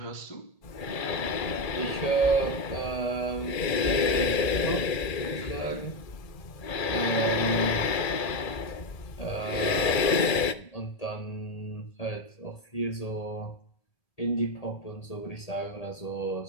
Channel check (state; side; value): late; right; 1.8 ms